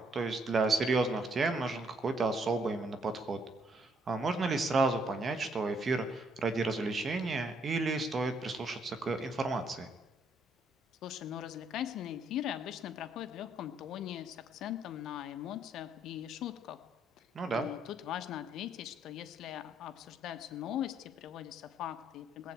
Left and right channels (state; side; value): normal; both; correlation 0.70